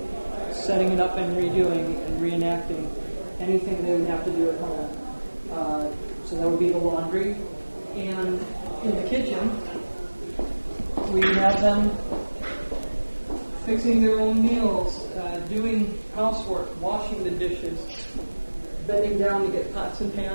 setting it up and redoing and reenacting anything they would have to do at home. So that would be the laundry. And in the kitchen, we have them fixing their own meals, doing housework, washing the dishes, bending down to get pots and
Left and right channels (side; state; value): both; inverted; correlation -1.00